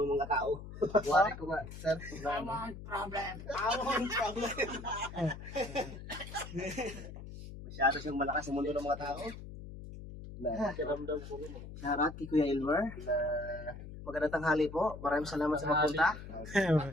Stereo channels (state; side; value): noise; left; hum, 12 dB below the sound